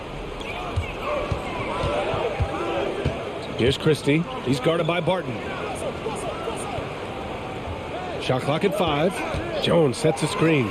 Here's Christie. He's guarded by Barton. Shot clock at 5. Jones sets a screen.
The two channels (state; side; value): identical; both; correlation 1.00